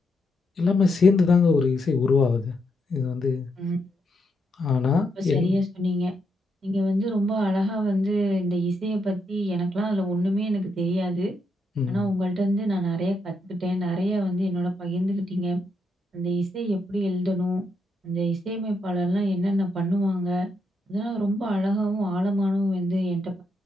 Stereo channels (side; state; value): both; normal; correlation 0.80